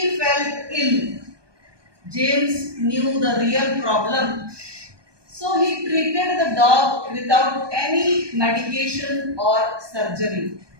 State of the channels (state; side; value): late; left; 1.2 ms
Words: fell ill. James knew the real problem, so he treated the dog without any medication or surgery.